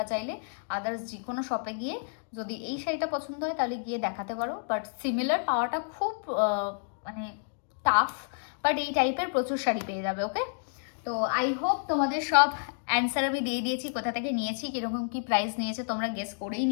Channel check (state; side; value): silent; right; digital silence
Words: চাইলে আদার্স যে কোনো শপে গিয়ে যদি এই শাড়িটা পছন্দ হয় তাহলে গিয়ে দেখাতে পারো। বাট সিমিলার পাওয়াটা খুব মানে টাফ, বাট এই টাইপের প্রচুর শাড়ি পেয়ে যাবে, ওকে? তো আই হোপ তোমাদের সব অ্যান্সার আমি দিয়ে দিয়েছি, কোথা থেকে নিয়েছি, কীরকম কী প্রাইস নিয়েছে তোমরা গেস করেই